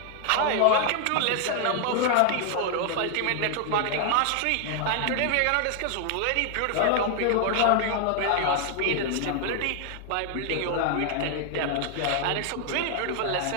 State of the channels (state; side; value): different; both; correlation 0.00